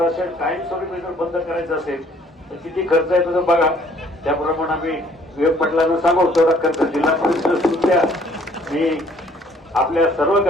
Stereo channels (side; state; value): both; normal; correlation 0.60